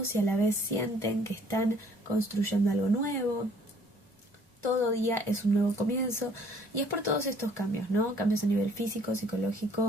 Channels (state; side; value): normal; both; correlation 0.59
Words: y a la vez sienten que están construyendo algo nuevo. Todo día es un nuevo comienzo, y es por todos estos cambios, ¿no? Cambios a nivel físico,